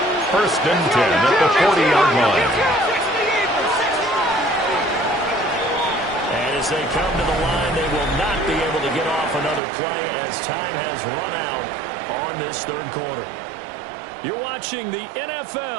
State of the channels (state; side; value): drops out; left; at 9.6 s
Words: 1st and 10 at the 40-yard line. And as they come to the line, they will not be able to get off another play as time has run out on this third quarter. You're watching the